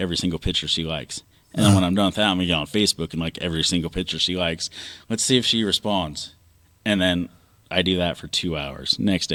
single picture she likes. And then when I'm done with that, I'm gonna get on Facebook and like every single picture she likes. Let's see if she responds. And then I do that for 2 hours. Next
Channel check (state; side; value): identical; both; correlation 1.00